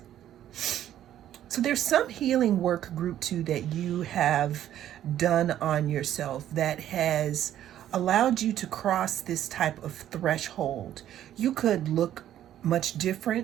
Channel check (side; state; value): left; quieter; 11.6 dB